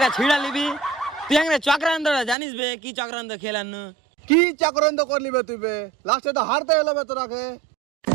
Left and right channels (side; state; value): left; drops out; at 2.4 s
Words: কা ছিড়া লিবি তুই আগে চক্রান্ত জানিস বে, কি চক্রান্ত খেলানো? কি চক্রান্ত করলি বে তুই বে? লাস্টে তো হারতে এলো বে তোরাকে।